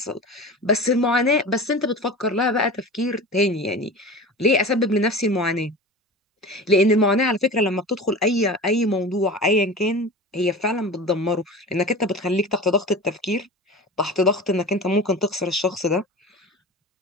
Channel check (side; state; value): both; normal; correlation 0.33